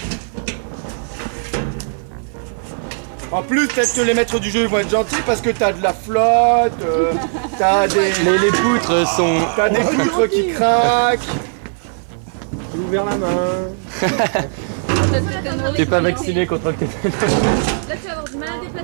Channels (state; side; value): silent; left; 58 dB below the other